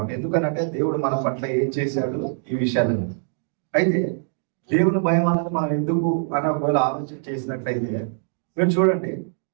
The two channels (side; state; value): left; silent; digital silence